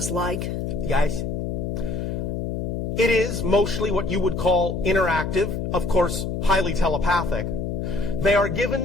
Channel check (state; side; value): noise; left; hum, 3 dB below the sound